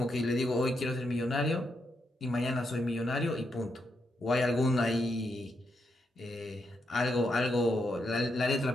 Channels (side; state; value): both; normal; correlation 0.81